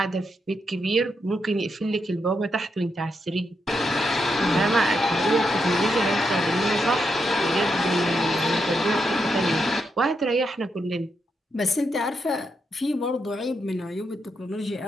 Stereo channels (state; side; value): normal; both; correlation 0.82